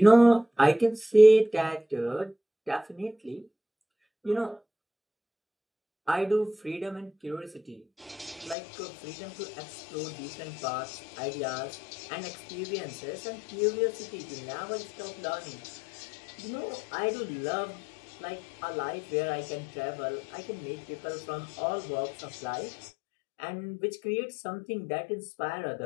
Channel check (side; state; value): right; drops out; at 8.6 s